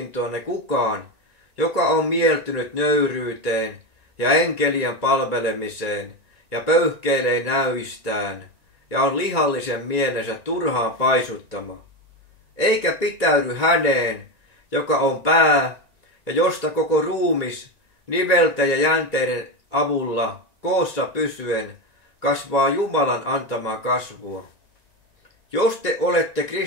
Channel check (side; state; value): left; late; 1.9 ms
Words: kukaan, joka on mieltynyt nöyryyteen ja enkelien palvelemiseen ja pöyhkeilee näyistään ja on lihallisen mielensä turhaan paisuttama. eikä pitäydy häneen, joka on pää ja josta koko ruumis nivelten ja jänteiden avulla koossa pysyen kasvaa Jumalan antamaa kasvua. Jos te olette